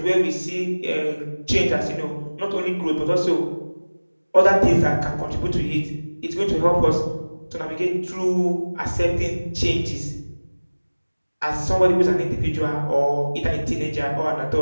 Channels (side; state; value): both; inverted; correlation -1.00